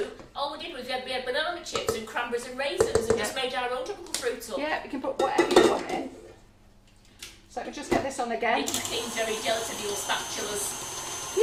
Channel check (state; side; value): identical; both; correlation 1.00